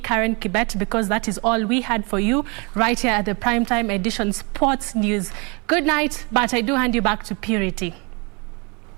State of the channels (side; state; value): left; quieter; 30.9 dB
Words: Kibet, because that is all we had for you right here at the Primetime Edition Sports News. Good night, but I do hand you back to Purity.